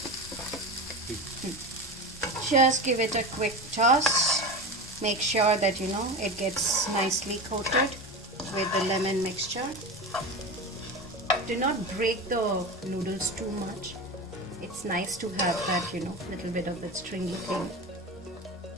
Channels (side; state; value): both; normal; correlation 0.26